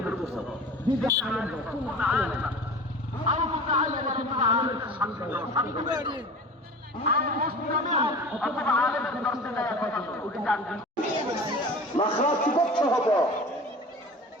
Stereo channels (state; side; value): normal; both; correlation 0.38